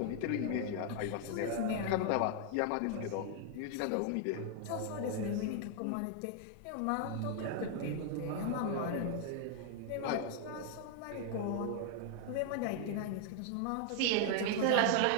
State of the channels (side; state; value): both; different; correlation 0.00